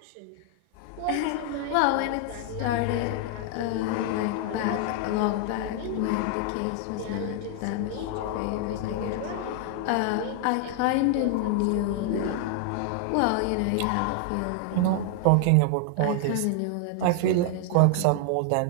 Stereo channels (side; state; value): both; different; correlation 0.00